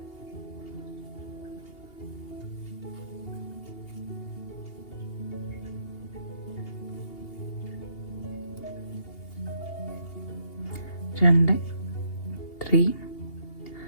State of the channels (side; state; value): right; late; 2.8 ms